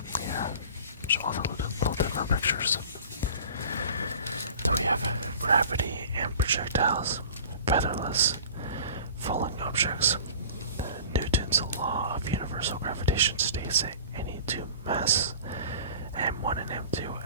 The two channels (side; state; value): both; inverted; correlation -0.42